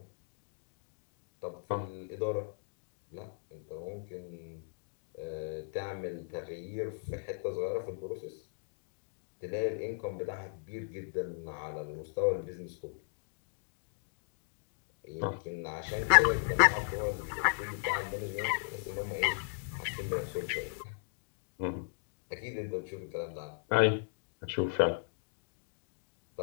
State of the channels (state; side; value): silent; right; digital silence